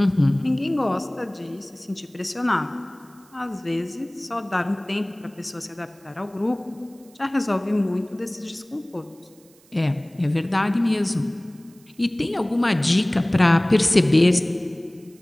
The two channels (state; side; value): noise; right; hiss, 29 dB below the sound